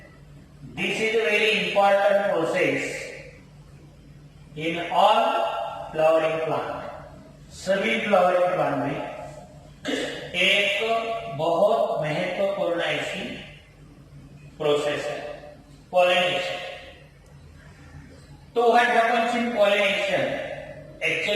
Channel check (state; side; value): identical; both; correlation 1.00